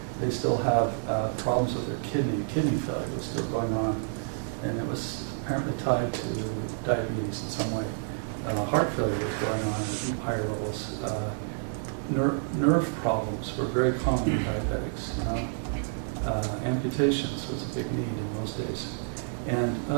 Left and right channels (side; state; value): left; silent; digital silence